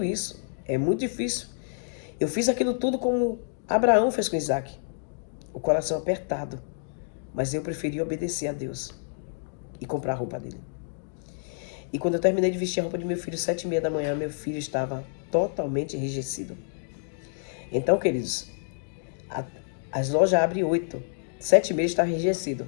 isso, é muito difícil. Eu fiz aquilo tudo como Abraão fez com Isaac, o coração apertado, mas eu preferi obedecer a Deus e comprar a roupa dele. E quando eu terminei de vestir a roupa de meu filho, 7h30 da manhã, meu filho estava totalmente enrijecido. Então, queridos, as lojas abrem 8, 7h30 está enrijecido.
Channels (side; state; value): right; silent; digital silence